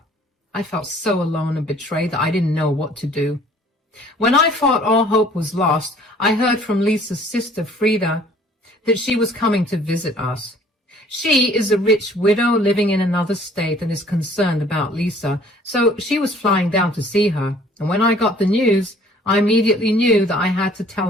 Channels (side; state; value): both; normal; correlation 0.55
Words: I felt so alone and betrayed that I didn't know what to do. When I thought all hope was lost, I heard from Lisa's sister, Frida, that she was coming to visit us. She is a rich widow living in another state and is concerned about Lisa, so she was flying down to see her. And when I got the news, I immediately knew that I had to tell